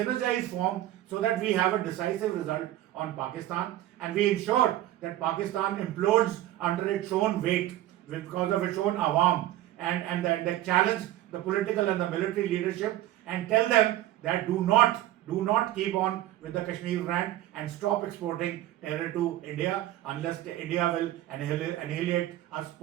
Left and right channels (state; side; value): quieter; left; 14.1 dB